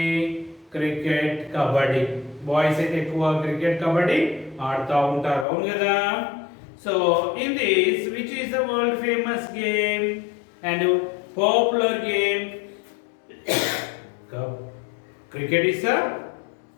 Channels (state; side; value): drops out; right; at 5.5 s